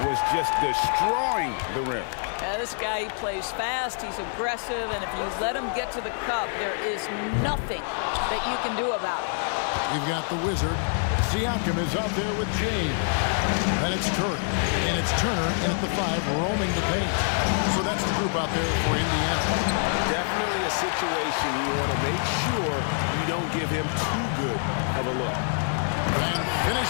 Was just destroying the rim. This guy, he plays fast, he's aggressive, and if you let him get to the cup, there is nothing that you can do about it. You've got the Wizard. Siakam is out there with James. And it's Curry. And it's Turner in at the 5, roaming the paint. So that's the group out there for Indiana. Definitely a situation you want to make sure you don't give him too good of a look. And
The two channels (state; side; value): silent; right; 61 dB below the other